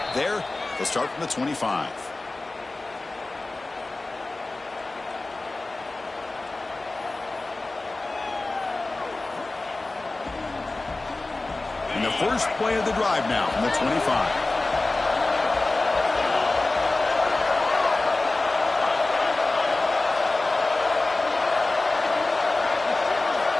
there. They'll start from the 25. And the first play of the drive now from the 25.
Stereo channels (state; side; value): quieter; right; 3.1 dB